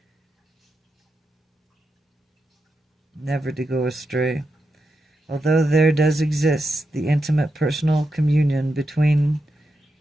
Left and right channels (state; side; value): normal; both; correlation 0.87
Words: never to go astray. Although there does exist the intimate personal communion between